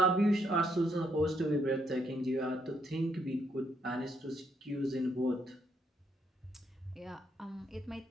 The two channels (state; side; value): normal; both; correlation 0.74